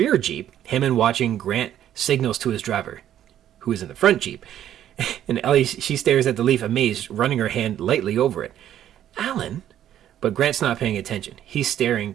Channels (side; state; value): left; quieter; 11.2 dB